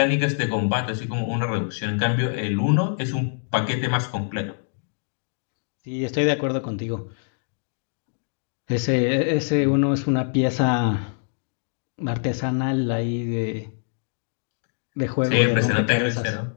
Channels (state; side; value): silent; right; digital silence